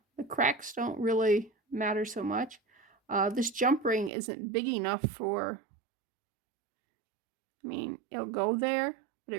the cracks don't really matter so much. This jump ring isn't big enough for, I mean, it'll go there, but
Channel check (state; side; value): drops out; left; at 4.1 s